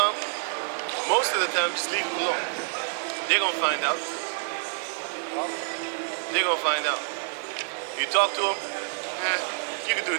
most of the time just leave them alone. They're gonna find out. They're gonna find out. You talk to them, you can do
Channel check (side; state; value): left; silent; 60 dB below the other